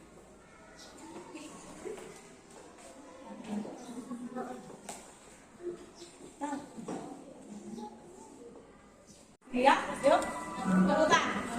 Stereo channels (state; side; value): identical; both; correlation 1.00